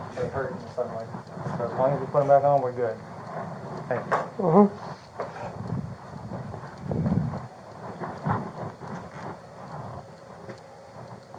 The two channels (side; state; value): both; identical; correlation 1.00